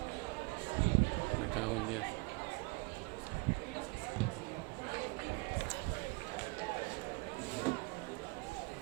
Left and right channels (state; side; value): quieter; left; 28.2 dB